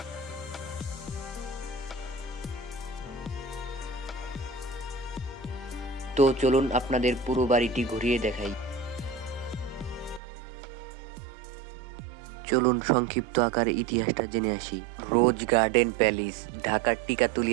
তো চলুন আপনাদের পুরো বাড়িটি ঘুরিয়ে দেখাই। চলুন সংক্ষিপ্ত আকারে ইতিহাসটা জেনে আসি। রোজ গার্ডেন প্যালেস ঢাকার টিকাতুলি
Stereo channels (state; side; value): drops out; left; at 10.2 s